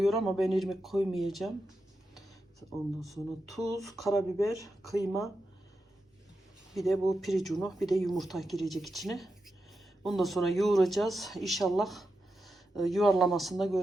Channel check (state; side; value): normal; both; correlation 0.88